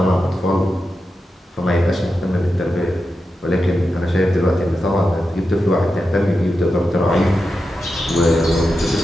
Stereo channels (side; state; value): both; normal; correlation 0.89